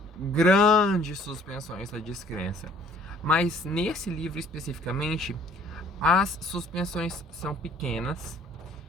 grandes suspensões da descrença. Mas nesse livro especificamente, as suspensões são pequenas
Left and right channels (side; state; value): both; normal; correlation 0.57